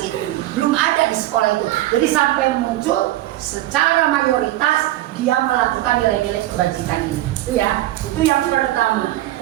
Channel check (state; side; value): quieter; left; 15.5 dB